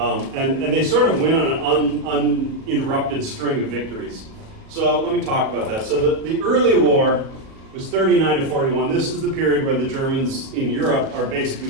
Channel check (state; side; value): late; left; 37 ms